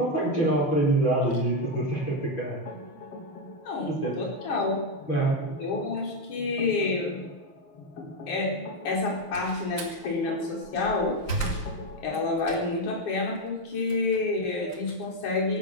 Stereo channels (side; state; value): right; late; 5.7 ms